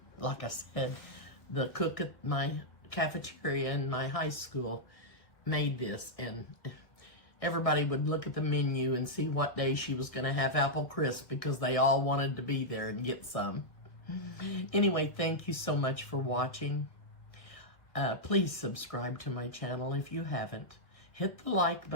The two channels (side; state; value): right; late; 1.6 ms